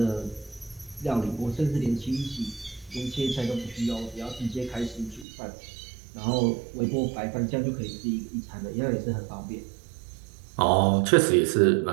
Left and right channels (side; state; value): left; drops out; at 5.2 s